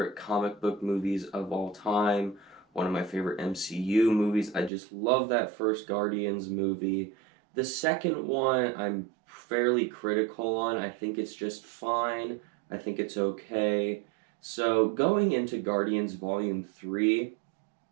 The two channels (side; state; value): left; drops out; at 4.7 s